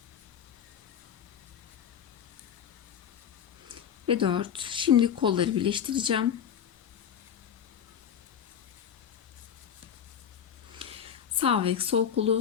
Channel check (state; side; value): quieter; right; 8.6 dB